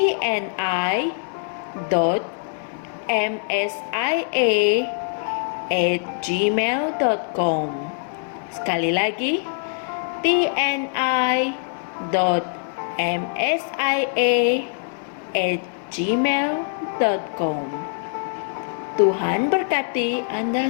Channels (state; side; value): silent; right; digital silence